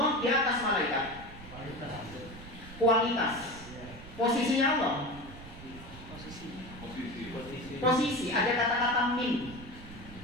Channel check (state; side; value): noise; right; rumble, 15 dB below the sound